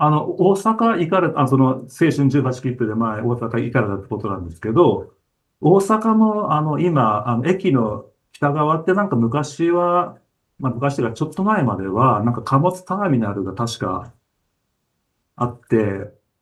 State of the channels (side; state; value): both; identical; correlation 1.00